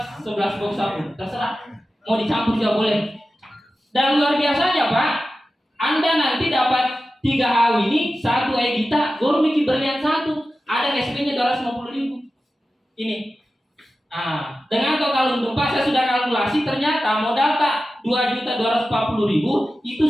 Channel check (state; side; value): normal; both; correlation 0.93